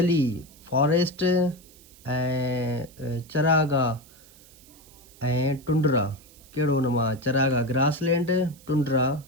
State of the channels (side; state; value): right; noise; hiss, 24 dB below the sound